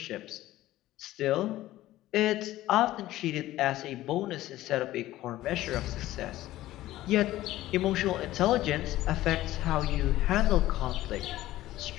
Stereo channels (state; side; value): quieter; right; 15.5 dB